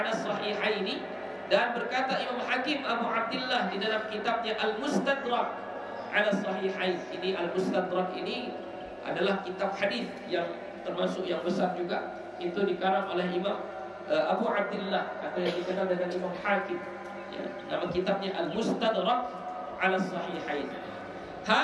as-sahihaini, dan berkata Imam Hakim Abu Abdullah di dalam kitabnya Al-Mustadrak 'ala as-sahihain. Ini Al-Mustadrak ini adalah kitab hadis yang termasuk yang besar juga. Itu dikarang oleh Imam Abu Abdullah, atau yang dikenal dengan Imam Hakim ya. Nama kitabnya Al-Mustadrak 'ala as-sahihain.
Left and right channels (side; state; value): both; identical; correlation 1.00